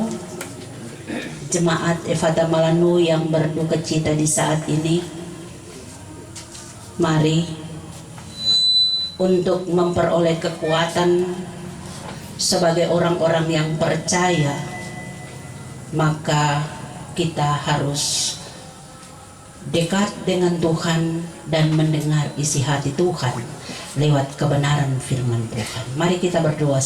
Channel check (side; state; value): both; identical; correlation 1.00